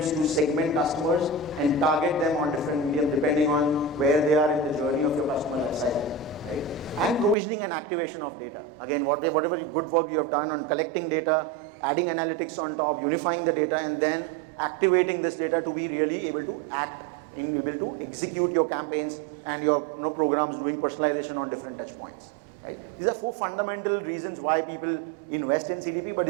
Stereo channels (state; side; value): drops out; left; at 7.4 s